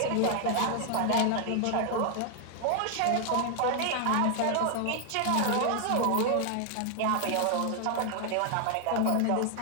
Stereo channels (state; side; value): different; both; correlation 0.00